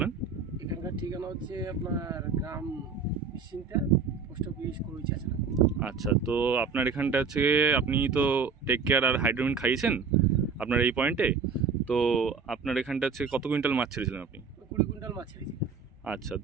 এখানকার ঠিকানা হচ্ছে আপনার গ্রাম নিশ্চিন্তা, পোস্ট অফিস কলইচাছড়া। আচ্ছা, তো আপনার এখানটা হচ্ছে আপনি তো টেক কেয়ার আর হাইড্রোমিন খাইয়েছেন আপনার এই পয়েন্টে। তো আপনার এখানটা হচ্ছে কত কুইন্টাল মাছ ছেড়েছিলেন আপনি? 20 কুইন্টাল মাছ ছেড়েছি। আচ্ছা,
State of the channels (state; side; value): quieter; left; 5.4 dB